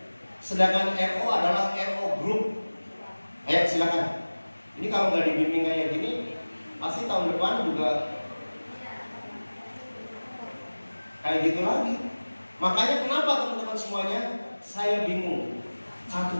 sedangkan RO adalah RO group. Ayo silakan. Ini kalau nggak dibimbing kayak gini, pasti tahun depan juga kayak gitu lagi. Makanya kenapa teman-teman semuanya saya bingung.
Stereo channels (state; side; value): inverted; both; correlation -1.00